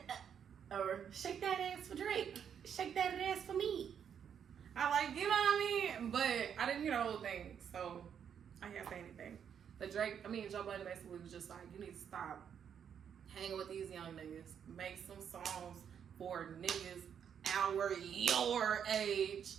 Or shake that ass for Drake. Shake that ass for me. I like, you know what I mean? But I didn't hear the whole thing, so I can't say anything. But Joe Budden basically was just like, you need to stop hanging with these young niggas. Make some songs for niggas your age.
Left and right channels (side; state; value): left; quieter; 8.1 dB